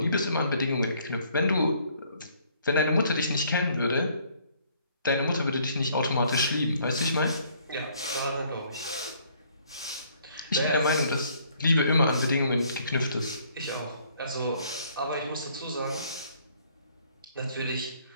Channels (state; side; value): inverted; both; correlation -0.63